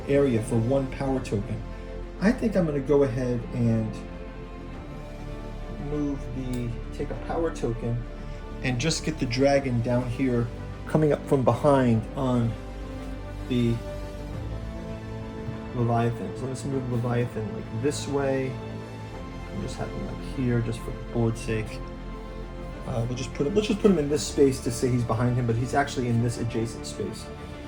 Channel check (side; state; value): both; identical; correlation 1.00